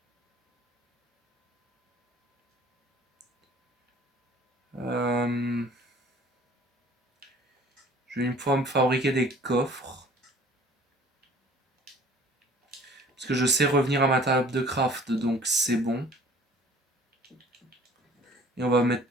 Je vais une fois me fabriquer des coffres. Parce que je sais revenir à ma table de craft, donc c'est bon. Et on va mettre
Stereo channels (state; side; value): normal; both; correlation 0.50